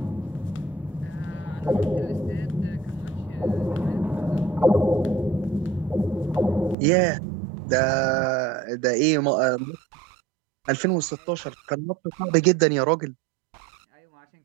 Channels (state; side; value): drops out; left; at 6.8 s